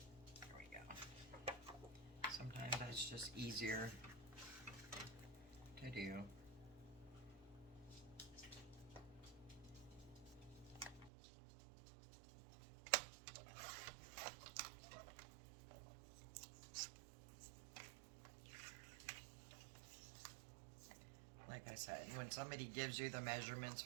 It's just easier to do. Like I said, when somebody gives you the measurements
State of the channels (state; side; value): drops out; left; at 11.1 s